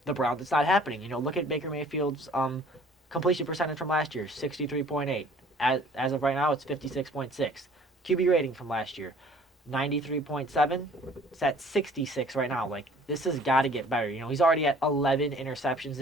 the Browns, it's not happening. Look at Baker Mayfield's completion percentage from last year, 63.8. As of right now, it's 56.6. QB rating from last year, 93.7. It's at 66 right now. Like, this has got to get better. He's already at 11 interceptions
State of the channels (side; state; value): both; normal; correlation 0.53